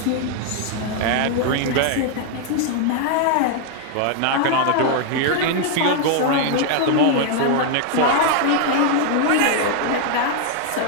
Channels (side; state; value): both; different; correlation 0.00